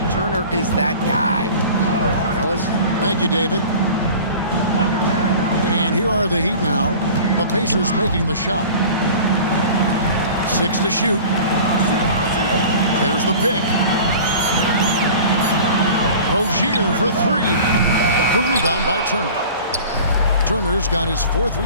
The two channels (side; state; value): both; inverted; correlation -0.40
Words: Turner is that guy. Fellas? Thank you, David. And here are the Heat now. The Pacers making the shot. 6 to shoot. There's the pick. Rozier for 3. The rebound by Turner. Turner's got his 4th